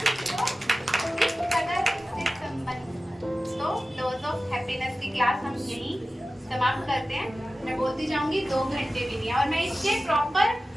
भी वो, इस कदर से संबंध। तो डोज ऑफ हैप्पीनेस की क्लास हम यहीं समाप्त करते हैं। मैं बोलती जाऊंगी, 2 घंटे भी नहीं है, और मैं इसके प्रॉपर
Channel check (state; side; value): normal; both; correlation 0.95